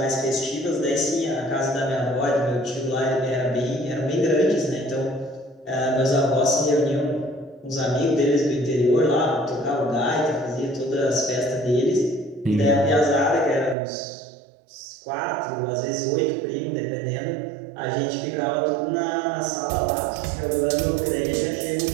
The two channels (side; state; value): left; drops out; at 13.8 s